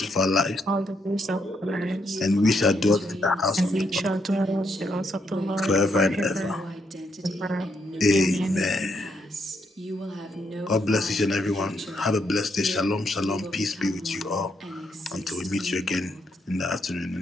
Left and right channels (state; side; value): normal; both; correlation 0.77